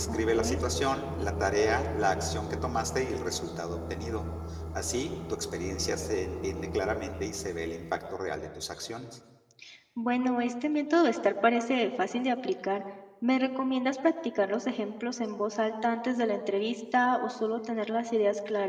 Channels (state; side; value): identical; both; correlation 1.00